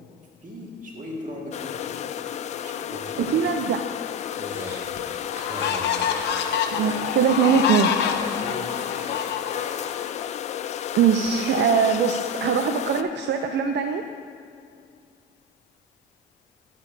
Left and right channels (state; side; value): normal; both; correlation 0.13